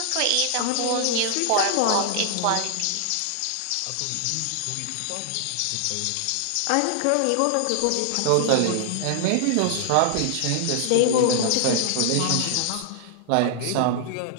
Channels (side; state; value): both; different; correlation 0.00